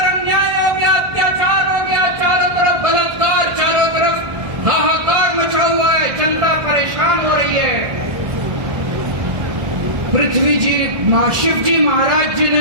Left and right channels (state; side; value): late; left; 1.4 ms